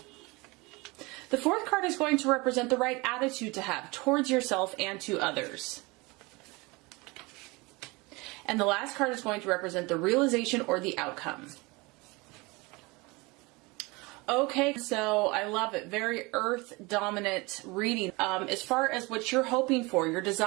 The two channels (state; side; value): quieter; left; 25.0 dB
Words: The fourth card is going to represent the right attitude to have towards yourself and to others. And the last card is going to represent the realization or the outcome. Okay, so I love it. Very earth dominant reading. As far as what you're hoping for, your